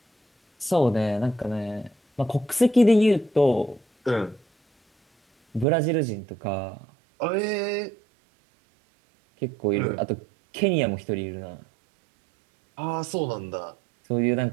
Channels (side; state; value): left; drops out; at 5.7 s